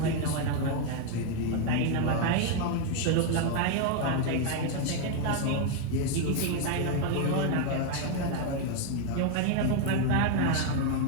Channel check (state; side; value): different; both; correlation 0.01